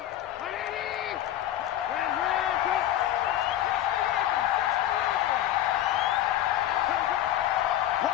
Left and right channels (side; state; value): right; quieter; 12.5 dB